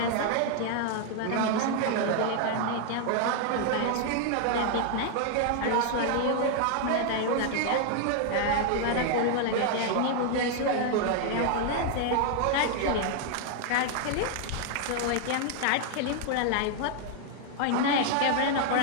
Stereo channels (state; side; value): different; both; correlation 0.00